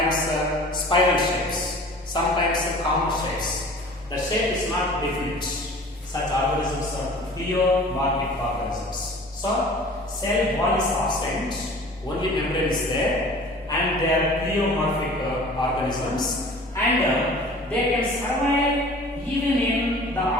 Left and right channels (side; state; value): both; normal; correlation 0.45